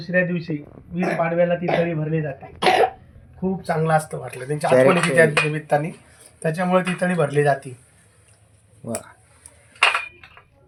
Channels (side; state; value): both; identical; correlation 1.00